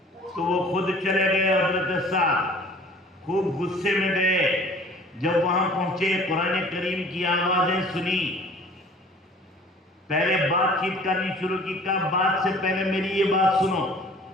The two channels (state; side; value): normal; both; correlation 0.49